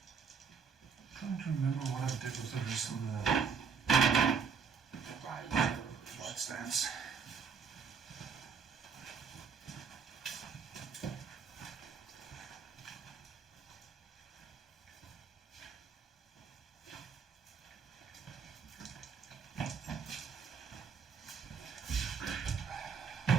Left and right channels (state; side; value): quieter; left; 6.1 dB